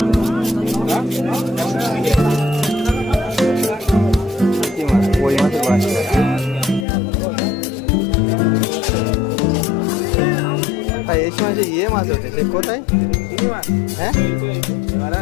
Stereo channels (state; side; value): drops out; right; at 6.9 s